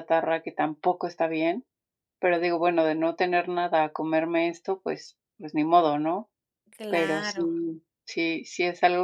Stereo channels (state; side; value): identical; both; correlation 1.00